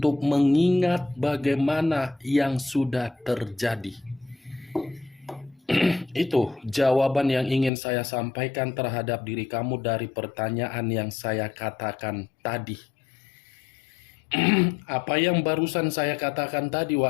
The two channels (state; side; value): drops out; right; at 7.7 s